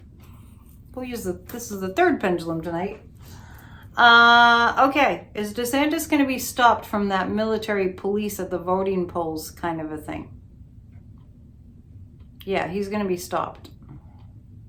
This is the third pendulum tonight. Okay, is DeSantis going to be stopped from that military police at the voting polls kind of a thing? Yeah, he's going to be stopped.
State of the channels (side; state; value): both; identical; correlation 1.00